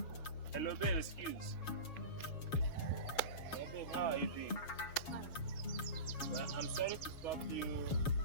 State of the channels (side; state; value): right; late; 7.2 ms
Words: Hello, babe, excuse. Hey, babe, how are you doing? Well, I'm sorry to stop you